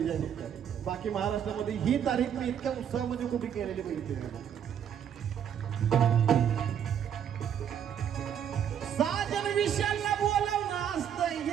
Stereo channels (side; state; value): left; quieter; 8.9 dB